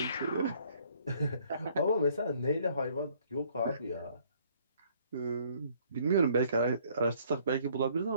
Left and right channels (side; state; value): both; inverted; correlation -0.62